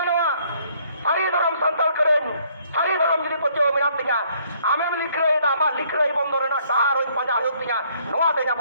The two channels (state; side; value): inverted; both; correlation -0.65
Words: ᱥᱟᱹᱨᱤ ᱫᱷᱚᱨᱚᱢ ᱥᱟᱱᱛᱟᱲ ᱠᱚᱨᱮᱱ ᱥᱟᱹᱨᱤ ᱫᱷᱚᱨᱚᱢ ᱡᱩᱫᱤ ᱯᱟᱹᱛᱭᱟᱹᱣ ᱢᱮᱱᱟᱜ ᱛᱤᱧᱟ, ᱟᱢᱮᱢ ᱞᱤᱠᱷᱟᱹᱭᱮᱫᱟ, ᱟᱢᱟᱜ ᱞᱤᱠᱷᱟᱹᱭ ᱵᱚᱱᱫᱚ ᱨᱮᱱᱟᱜ ᱰᱟᱦᱟᱨ ᱦᱚᱸ ᱯᱟᱸᱡᱟ ᱦᱩᱭᱩᱜ ᱛᱤᱧᱟ, ᱱᱚᱣᱟ ᱛᱮ